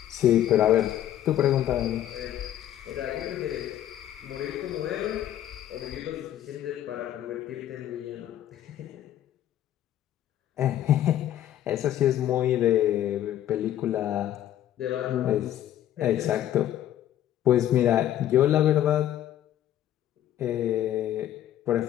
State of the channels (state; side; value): quieter; right; 11.9 dB